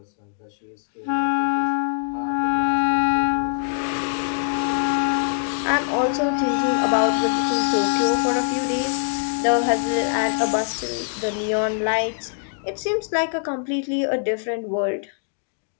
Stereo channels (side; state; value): right; silent; digital silence